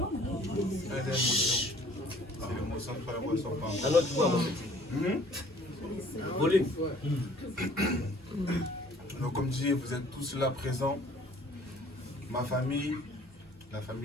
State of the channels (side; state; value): both; normal; correlation 0.54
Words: C'est l'émotion de faire l'émotion par À notre voix, mon petit. Volume. Donc, comme je dis, vous êtes tous là présents. Ma famille, la